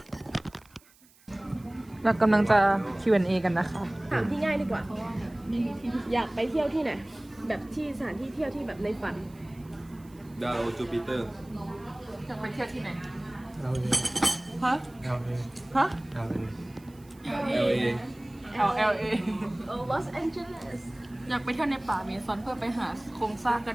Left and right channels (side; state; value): right; noise; hiss, 28 dB below the sound